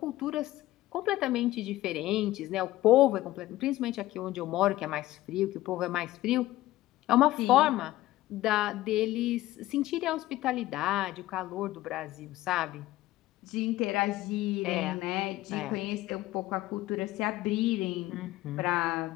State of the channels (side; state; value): right; quieter; 16.4 dB